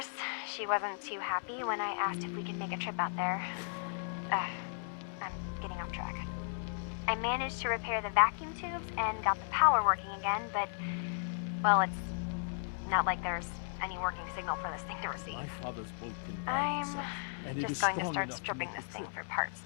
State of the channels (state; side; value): silent; right; digital silence